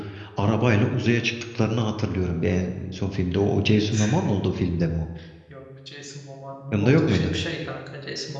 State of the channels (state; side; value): identical; both; correlation 1.00